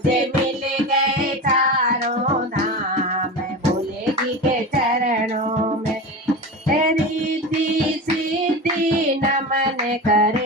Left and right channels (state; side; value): normal; both; correlation 0.26